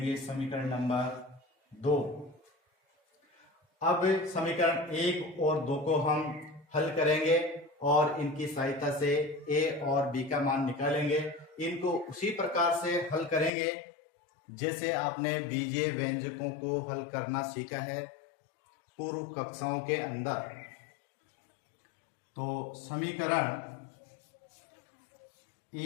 समीकरण नंबर 2। अब समीकरण 1 और 2 को हम हल करेंगे और इनकी सहायता से a और b का मान निकालेंगे। इनको उसी प्रकार से हल करेंगे जैसे आपने बीजीय व्यंजकों को हल करना सीखा है पूर्व कक्षाओं के अंदर। तो समीकरण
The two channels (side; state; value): right; drops out; at 13.5 s